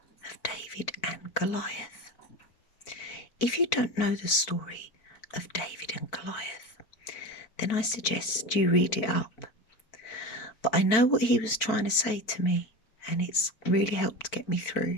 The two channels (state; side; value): late; right; 4.5 ms